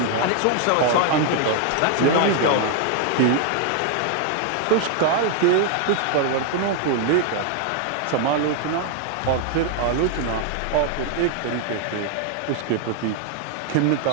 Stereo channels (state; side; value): different; both; correlation 0.00